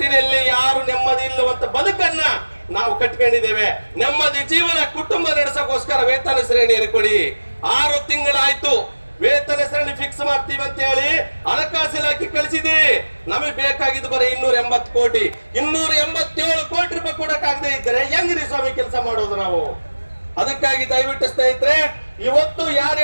ಯಾರು ನೆಮ್ಮದಿ ಇಲ್ಲವಂತ ಬದುಕನ್ನ ನಾವು ಕಟ್ಕೊಂಡಿದ್ದೇವೆ. ನೆಮ್ಮದಿ ಜೀವನ ಕುಟುಂಬ ನಡೆಸೋಕೋಸ್ಕರ ವೇತನ ಶ್ರೇಣಿಯನ್ನು ಕೊಡಿ. 6 ತಿಂಗಳಾಯ್ತು ವೇತನ ಶ್ರೇಣಿ ಫಿಕ್ಸ್ ಮಾಡ್ತೀವಿ ಅಂತ ಹೇಳಿ ಹಣಕಾಸು ಇಲಾಖೆ ಕಳಿಸಿದ್ದೀರಿ. ನಮಗೆ ಬೇಕಾಗಿದ್ದು ಬರೀ 280 ಕೋಟಿ. 287 ಕೋಟಿ ರೂಪಾಯಿ ಕೊಡಕ್ಕಾಗದೆ ಇದ್ದರೆ ಹೆಂಗ್ರಿ ಸ್ವಾಮಿ ಕೆಲಸ ಮಾಡೋದು ನಾವು? ಅದಕ್ಕಾಗಿ ದಯವಿಟ್ಟು ಸ್ನೇಹಿತರೆ, ಇವತ್ತು ಯಾರು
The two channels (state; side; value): inverted; both; correlation -1.00